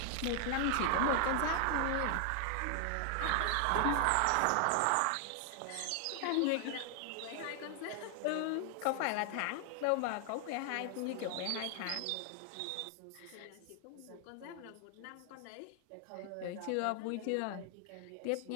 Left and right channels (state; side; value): different; both; correlation 0.00